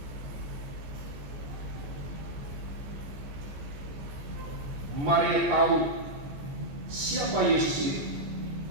Maria tahu siapa Yesus itu.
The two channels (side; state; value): left; late; 14 ms